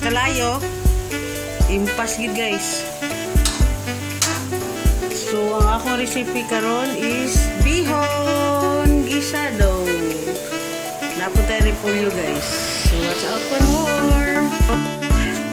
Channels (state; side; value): identical; both; correlation 1.00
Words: impas gid guys. So, ang akong recipe karon is bihon gisado. Napunta rin po yun guys. So, watch out for more.